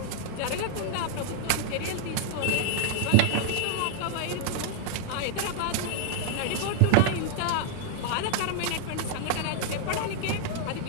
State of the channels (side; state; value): both; different; correlation 0.00